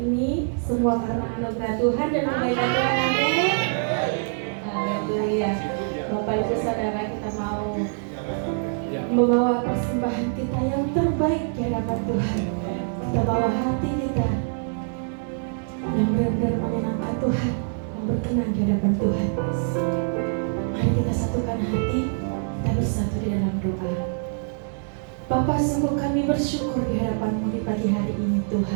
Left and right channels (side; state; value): left; silent; digital silence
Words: semua karena anugerah Tuhan dan kebaikan Tuhan. Amin. Haleluya. Bapak Ibu Saudara, kita mau membawa persembahan kita yang terbaik di hadapan Tuhan. Kita bawa hati kita yang benar-benar menyenangkan Tuhan, yang berkenan di hadapan Tuhan. Mari kita satukan hati, kita bersatu di dalam doa. Bapa, sungguh kami bersyukur di hadapan-Mu di pagi hari ini